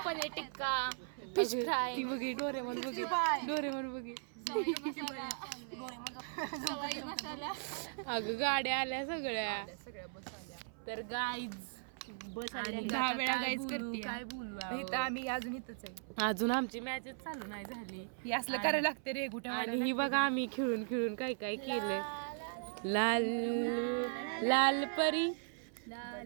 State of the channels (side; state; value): left; silent; 53 dB below the other